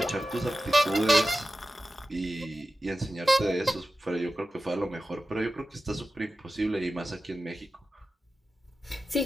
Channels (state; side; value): normal; both; correlation 0.94